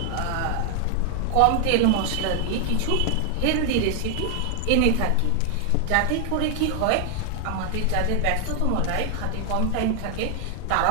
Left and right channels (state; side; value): different; both; correlation 0.00